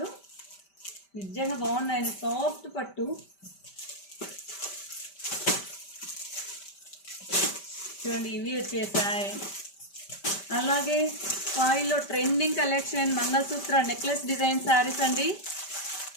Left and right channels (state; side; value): late; right; 5.1 ms